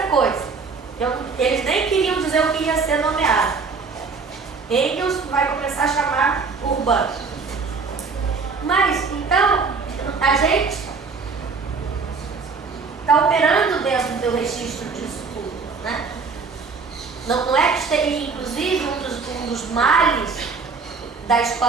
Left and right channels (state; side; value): quieter; left; 4.8 dB